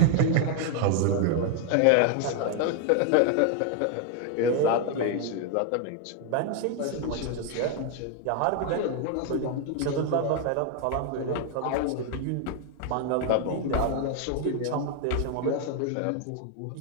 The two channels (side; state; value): both; different; correlation 0.00